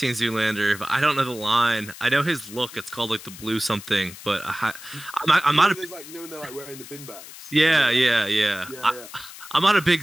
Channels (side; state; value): left; noise; hiss, 15 dB below the sound